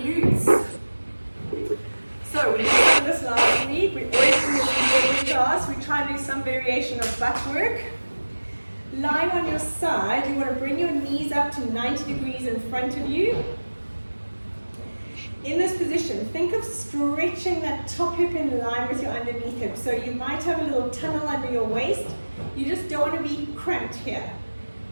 So we did this last week. We always do this in every class. We try and do some variation of butt work. Lying on your side, you want to bring your knees up to 90 degrees in front of you. In this position, think of stretching that top hip in line with your underneath hip. So you might have a little tunnel under your waist. You just don't want to be cramped here.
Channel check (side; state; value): both; inverted; correlation -1.00